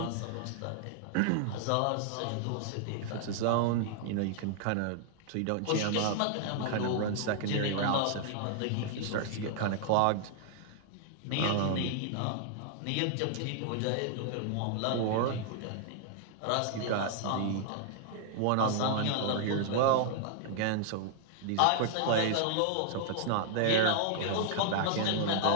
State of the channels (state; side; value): different; both; correlation -0.01